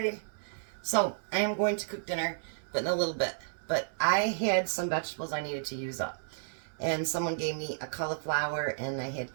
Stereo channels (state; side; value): silent; left; 56 dB below the other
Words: So I am going to cook dinner, but in a little bit. But I had some vegetables I needed to use up. And someone gave me a cauliflower, and I had